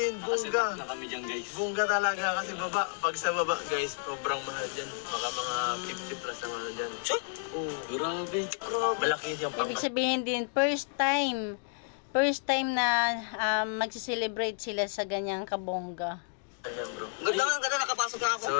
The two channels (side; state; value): right; silent; 57 dB below the other